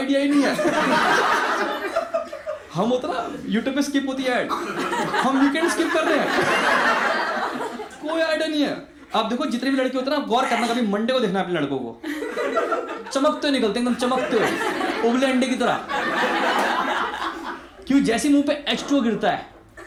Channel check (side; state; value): both; identical; correlation 1.00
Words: ही नहीं है। हम होता ना यूट्यूब पे स्किप होती है ऐड, हम वीकेंड स्किप कर रहे हैं। कोई आइडिया नहीं है। आप देखो जितने भी लड़के होते हैं ना, गौर करना, कभी मंडे को देखना अपने लड़कों को, चमकते निकलते एकदम चमकते उबले अंडे की तरह। क्यों? जैसे मुंह पे H2O गिरता है